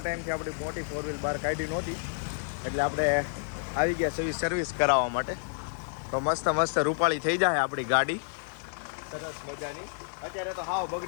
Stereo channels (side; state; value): right; silent; 58 dB below the other